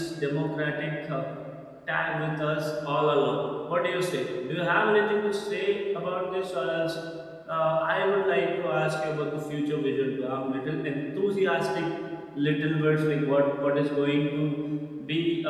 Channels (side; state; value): both; identical; correlation 1.00